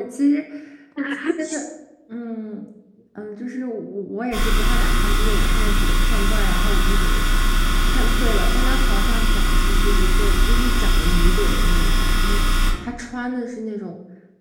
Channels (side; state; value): both; identical; correlation 1.00